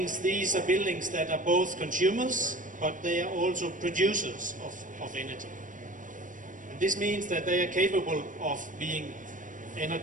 these are buildings that are both consumers, but they are also producers of energy. And this means that they are capable of being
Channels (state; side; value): late; left; 0.38 ms